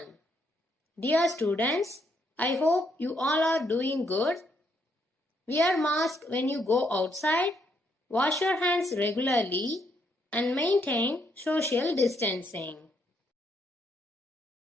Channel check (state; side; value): normal; both; correlation 0.74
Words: Dear students, I hope you all are doing good. Wear mask when you go outside, wash your hands regularly and maintain social distancing.